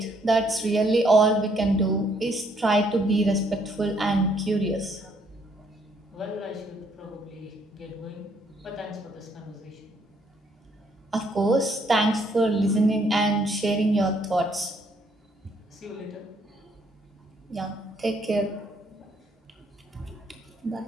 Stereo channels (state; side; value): normal; both; correlation 0.68